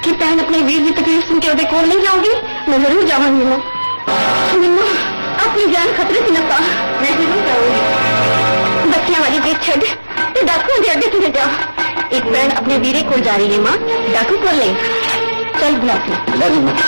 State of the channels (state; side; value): inverted; both; correlation -1.00